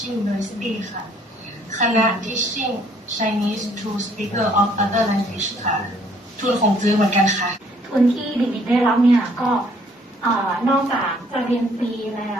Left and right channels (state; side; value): normal; both; correlation 0.62